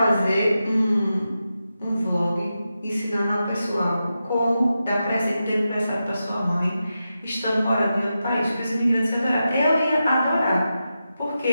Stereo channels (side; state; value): both; inverted; correlation -0.90